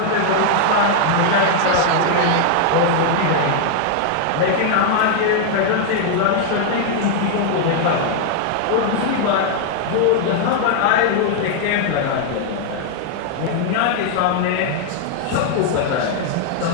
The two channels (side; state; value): both; different; correlation 0.00